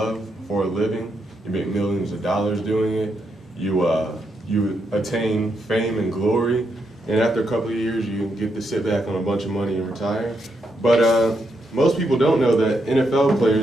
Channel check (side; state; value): both; normal; correlation 0.81